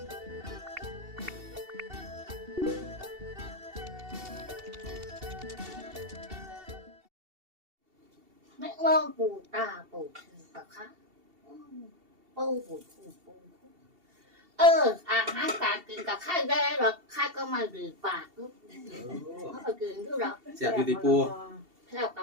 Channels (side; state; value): left; late; 2.7 ms